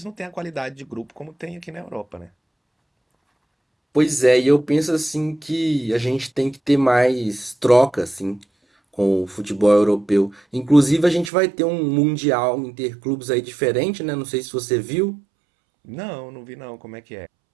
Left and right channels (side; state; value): left; drops out; at 11.3 s